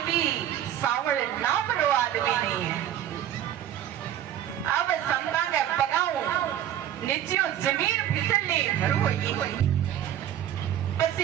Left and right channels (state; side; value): quieter; left; 11.2 dB